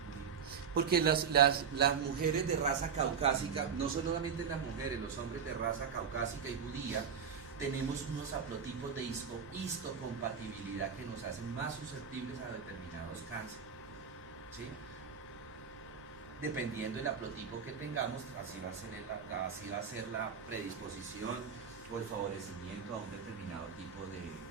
Porque las mujeres de raza caucásica, no solamente las mujeres, los hombres de raza caucásica y judía, tenemos unos haplotipos de histocompatibilidad que nos hacen más susceptibles a determinados cánceres, ¿sí? Dependiendo del haplotipo que tengamos, así va a ser la predisposición o el favorecimiento a un determinado tipo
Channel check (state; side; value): quieter; left; 6.7 dB